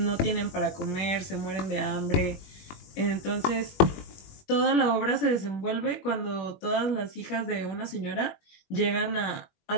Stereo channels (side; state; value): right; late; 21 ms